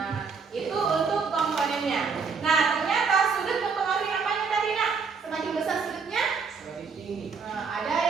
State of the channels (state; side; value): quieter; left; 5.3 dB